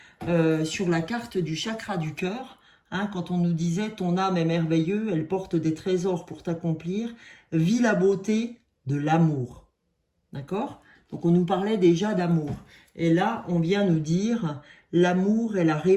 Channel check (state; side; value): identical; both; correlation 1.00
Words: sur la carte du chakra du cœur, hein, quand on nous disait « ton âme est merveilleuse, elle porte des trésors pour t'accomplir, vis la beauté de l'amour ». D'accord? Donc on nous parlait déjà d'amour. Et là, on vient nous dire « l'amour est la